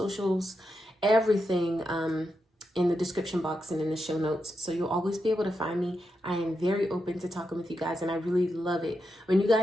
everything in the description box and in the show notes. So you'll always be able to find me. I am very open to talking with you guys, and I really love it when you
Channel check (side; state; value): both; normal; correlation 0.86